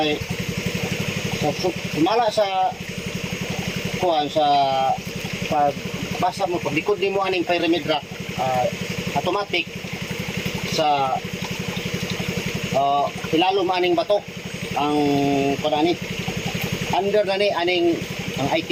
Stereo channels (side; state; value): both; identical; correlation 1.00